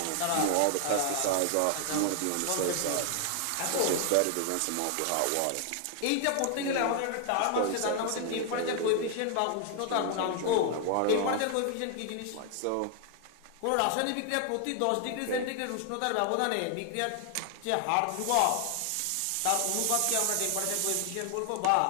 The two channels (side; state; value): both; different; correlation 0.00